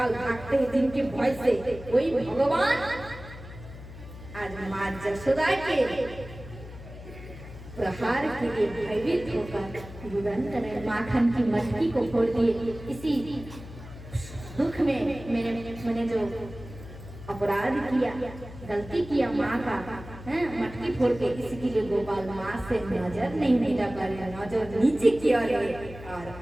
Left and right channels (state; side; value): noise; left; hum, 14 dB below the sound